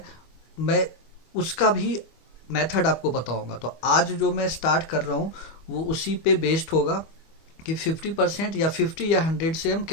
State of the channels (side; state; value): right; late; 25 ms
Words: मैं उसका भी मेथड आपको बताऊंगा। तो आज जो मैं स्टार्ट कर रहा हूँ वो उसी पे बेस्ड होगा कि 50% या 50 या 100 से हम